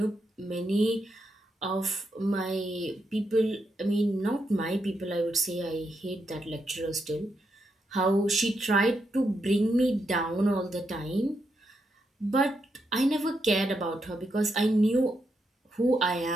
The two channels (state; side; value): normal; both; correlation 0.82